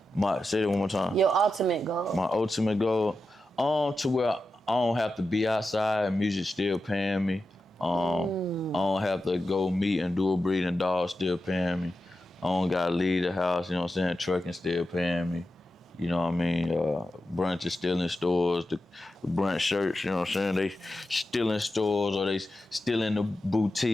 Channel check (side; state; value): both; normal; correlation 0.91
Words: Say that one more time. Your ultimate goal. My ultimate goal, to where I don't have to be outside, music still paying me. I don't have to go meet and do a breeding dog, still paying me. I don't gotta leave the house, you know what I'm saying? Trucking still paying me. You know what I mean? Brunch is still in stores. The brunch shirts, you know what I'm saying? They still in stores, or they still in the